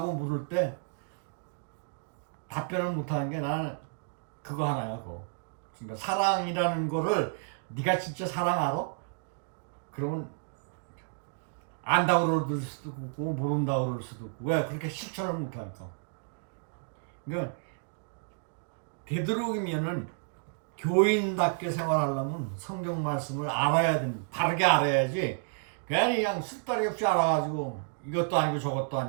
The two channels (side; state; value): left; silent; digital silence